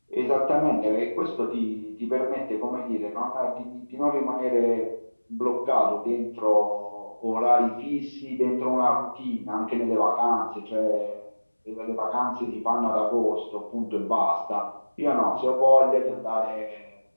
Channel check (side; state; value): both; inverted; correlation -1.00